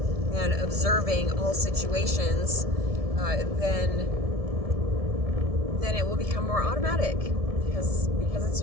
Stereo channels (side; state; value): left; late; 1.7 ms